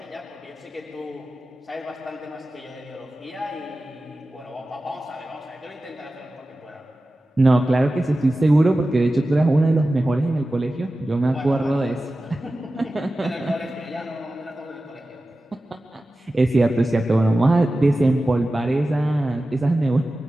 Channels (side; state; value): both; normal; correlation 0.95